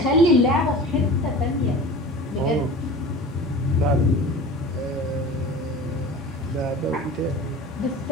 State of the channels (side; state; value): both; normal; correlation 0.38